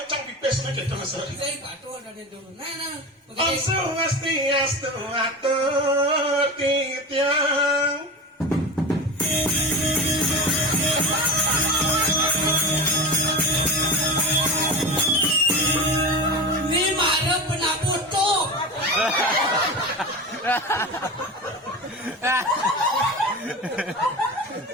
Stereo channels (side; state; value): both; normal; correlation 0.27